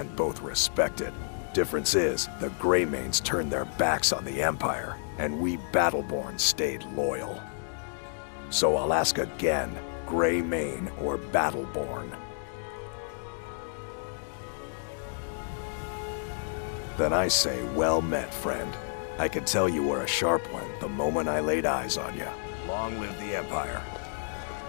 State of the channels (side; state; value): right; silent; digital silence